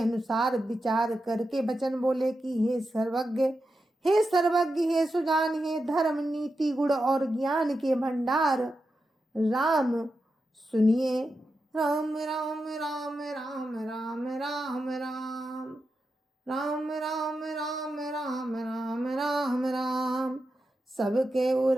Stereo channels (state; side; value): normal; both; correlation 0.89